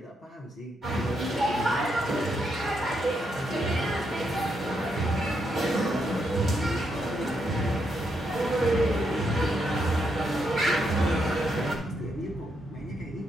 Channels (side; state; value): both; normal; correlation 0.79